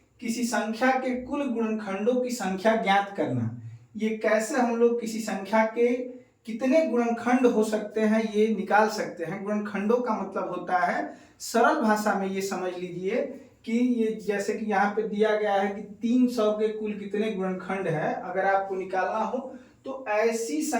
किसी संख्या के कुल गुणनखंडों की संख्या ज्ञात करना। ये कैसे हम लोग किसी संख्या के कितने गुणनखंड हो सकते हैं ये निकाल सकते हैं। गुणनखंडों का मतलब होता है, सरल भाषा में ये समझ लीजिए कि ये जैसे कि यहाँ पे दिया गया है कि 300 के कुल कितने गुणनखंड है। अगर आपको निकालना हो तो ऐसी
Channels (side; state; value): both; identical; correlation 1.00